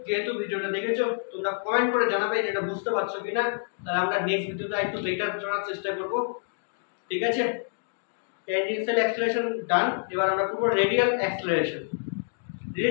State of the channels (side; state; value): right; silent; digital silence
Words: যেহেতু ভিডিওটা দেখেছো তোমরা কমেন্ট করে জানাবে যে এটা বুঝতে পারছো কিনা, তাহলে আমরা নেক্সট ভিডিওটা একটু বেটার করার চেষ্টা করব, ঠিক আছে? ট্যানজেনশিয়াল অ্যাক্সেলারেশন ডান। এবার আমরা করব radial acceleration.